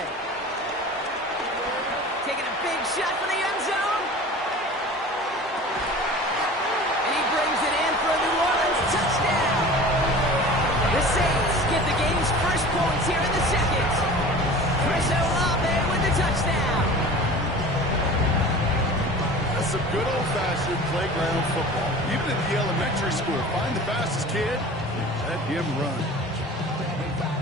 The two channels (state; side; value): normal; both; correlation 0.39